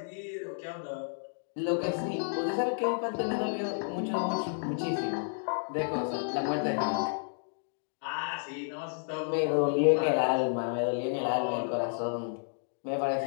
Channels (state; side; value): silent; right; digital silence